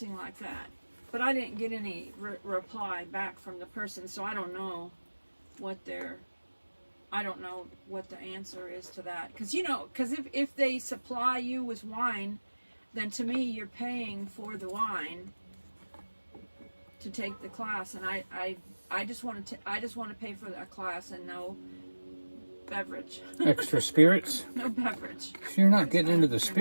like that. But I didn't get any reply back from the person, so I don't know what I don't know what the answer is to that. Because, you know, if they supply you with wine, then to me you're paying for the wine to take the class, and I just want to pay for that class and no beverage. Extra spirits? No beverage. You're not getting into the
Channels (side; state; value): both; inverted; correlation -1.00